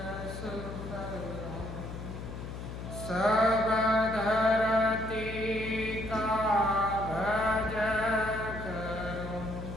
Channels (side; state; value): left; noise; hum, 8 dB below the sound